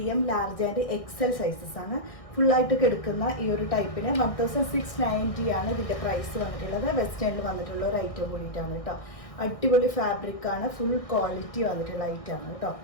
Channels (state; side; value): late; right; 1.6 ms